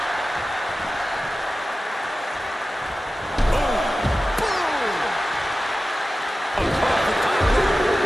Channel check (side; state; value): both; normal; correlation 0.95